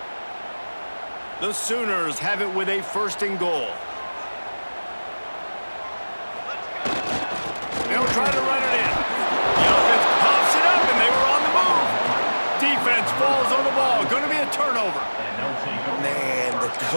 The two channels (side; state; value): both; inverted; correlation -1.00